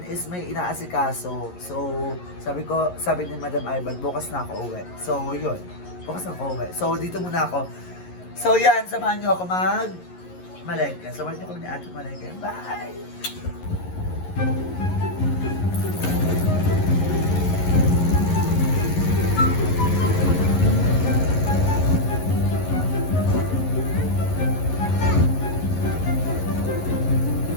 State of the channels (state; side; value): late; right; 11 ms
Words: is may inaasikaso. So, sabi ni Madam Ivan, bukas na ako uwi. So, yun. Bukas na ako uwi. So, dito muna ako. So, yan. Samahan niyo ako malengke. Samahan niyo ako ni Ate Malengke. Bye!